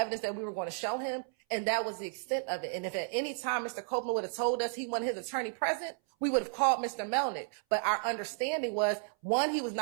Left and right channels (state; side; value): silent; left; 56 dB below the other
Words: that we were going to show him. And that was the extent of it. And if at any time Mr. Copeland would have told us he wanted his attorney present, we would have called Mr. Melnick. But our understanding was, one, he was